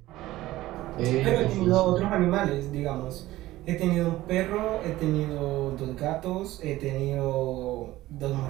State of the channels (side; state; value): left; quieter; 16.4 dB